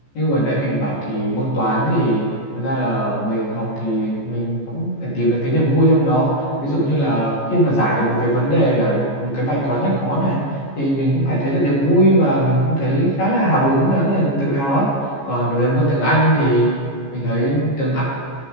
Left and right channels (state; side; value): late; right; 14 ms